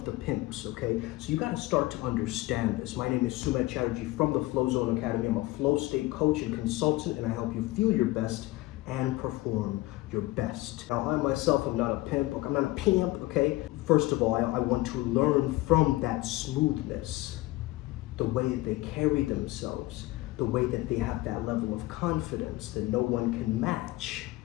the pimps, okay? So you gotta start to understand this. My name is Sumedh Chatterjee from the Flow Zone Academy. I'm a flow state coach and consultant, and I help you feel your best and perform your best. Now, I myself am not a pimp, I'm not a p.i.m.p, okay? First of all, I want to learn from that smoothness, the way that they carry themselves, the way that they have that level of confidence that no one can match.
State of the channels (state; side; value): quieter; right; 19.2 dB